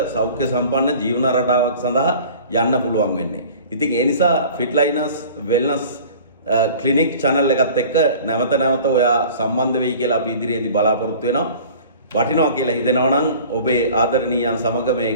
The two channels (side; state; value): both; inverted; correlation -0.44